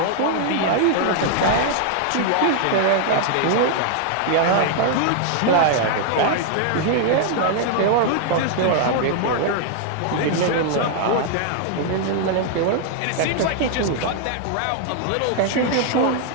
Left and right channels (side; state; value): both; different; correlation 0.00